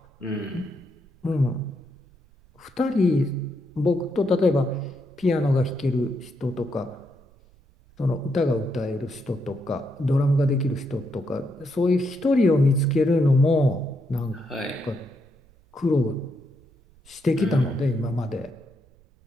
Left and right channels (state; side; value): noise; right; rumble, 29 dB below the sound